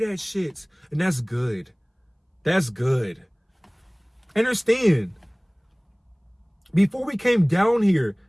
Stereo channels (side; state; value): both; identical; correlation 1.00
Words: shit. And that's good. That's good. Understand. Before we came down here,